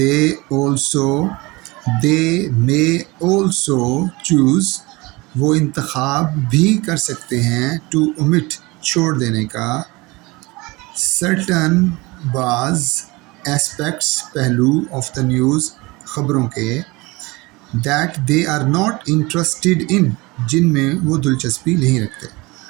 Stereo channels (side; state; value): left; quieter; 23.4 dB